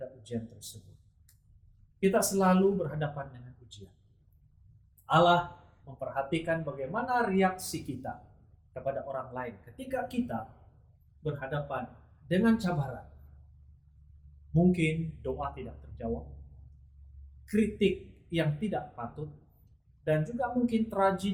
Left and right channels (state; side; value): identical; both; correlation 1.00